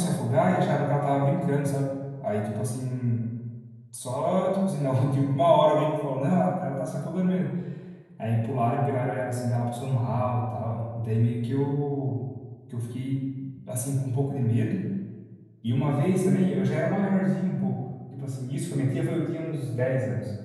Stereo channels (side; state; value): both; identical; correlation 1.00